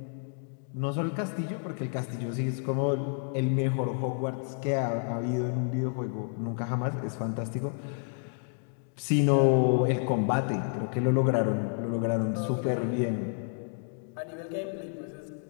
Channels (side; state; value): right; silent; 58 dB below the other